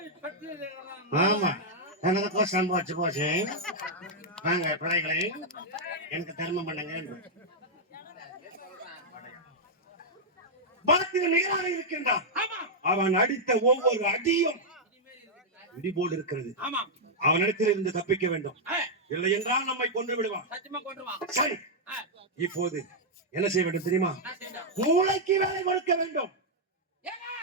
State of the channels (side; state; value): both; normal; correlation -0.05